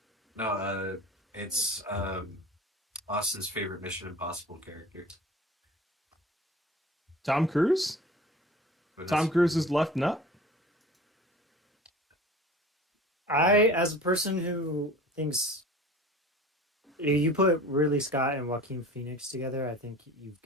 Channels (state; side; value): normal; both; correlation 0.41